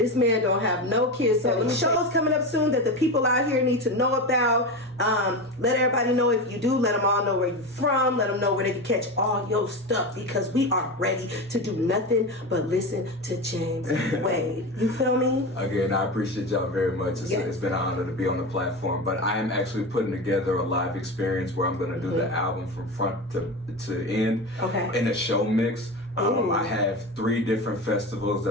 man don't have no kids. So shows coming up soon that the people out here need to know about. Let everybody know if you do. Let them all know where you're from. Let them know where they can catch all your stuff, because we are ready to do nothing but listen to James Wade. You feel me? Again, I appreciate y'all very much. It's been an honor to be on the platform. But I am actually putting together a live experience where I'm going to do the album from front to end in a show mix. I have 3 different festivals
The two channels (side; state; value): both; normal; correlation 0.23